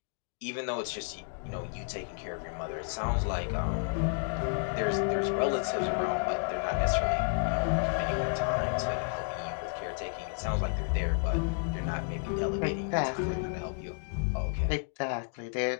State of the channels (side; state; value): right; silent; 57 dB below the other